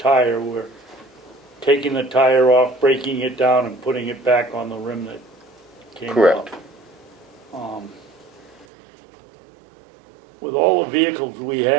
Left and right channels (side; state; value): left; drops out; at 8.7 s